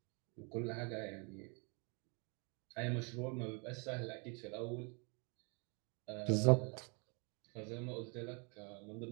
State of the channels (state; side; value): quieter; left; 34.0 dB